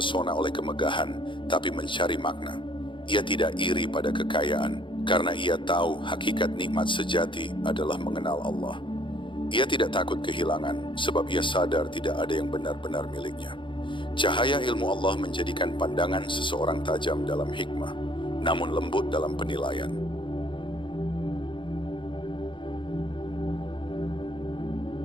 oleh kemegahan, tapi mencari makna. Ia tidak iri pada kekayaan, karena ia tahu hakikat nikmat sejati adalah mengenal Allah. Ia tidak takut kehilangan, sebab ia sadar tidak ada yang benar-benar miliknya. Cahaya ilmu Allah menjadikan pandangan seseorang tajam dalam hikmah, namun lembut dalam penilaian.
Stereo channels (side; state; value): right; late; 0.24 ms